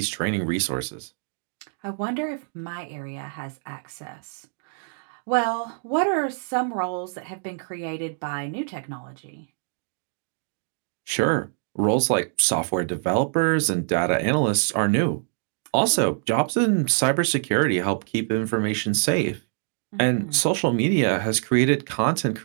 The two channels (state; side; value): silent; left; digital silence